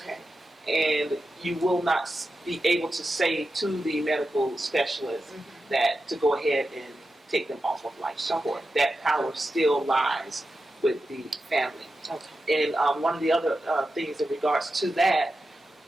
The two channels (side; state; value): both; normal; correlation 0.90